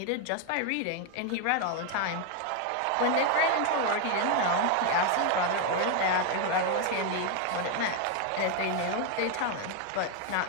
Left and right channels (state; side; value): different; both; correlation 0.01